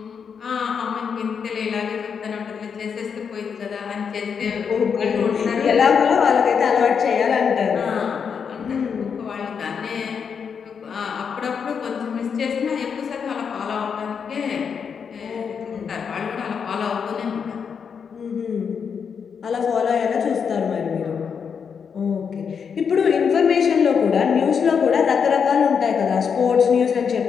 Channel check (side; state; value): right; quieter; 6.6 dB